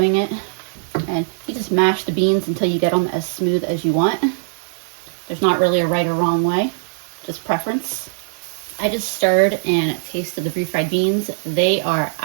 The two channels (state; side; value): silent; left; 57 dB below the other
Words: it. And you just mash the beans until you get them as smooth as you want. There's not really a right or wrong way. just preference. I just stirred and tasted the refried beans. They are